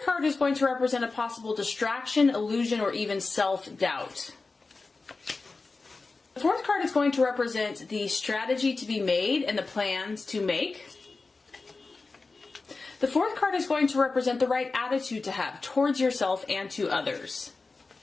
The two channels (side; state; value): right; quieter; 3.9 dB